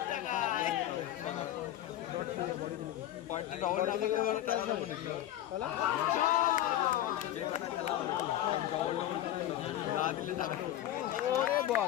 পার্টি ডবল না করলে বড় খেলা হবে না যে কটা খেলা হবে ডবল না দিলে টাকা ওরে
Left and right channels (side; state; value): right; quieter; 12.9 dB